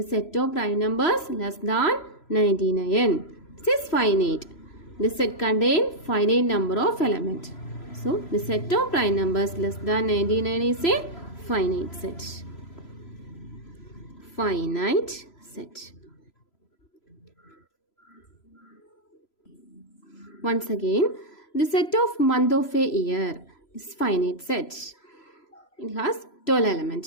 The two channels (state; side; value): late; right; 3.0 ms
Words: set of prime numbers less than 99. This is finite. The set contains finite number of elements. So the set of prime numbers less than 99 is a finite set. Finite set. Once again, the set of month of a year is finite set. It has 12